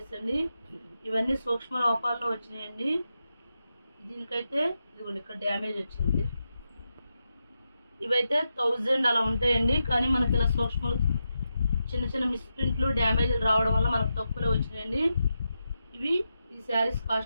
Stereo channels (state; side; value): inverted; both; correlation -0.87